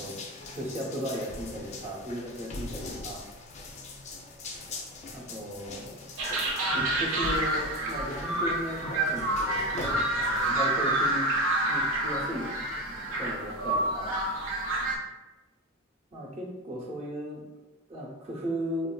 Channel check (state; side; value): normal; both; correlation 0.20